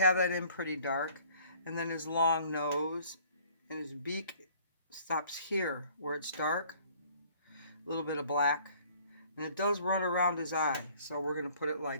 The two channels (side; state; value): both; inverted; correlation -0.56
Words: that in pretty dark. And then his long nose and his beak stops here where it's dark. A little bit of black. And it does run around his eye. So we're going to put it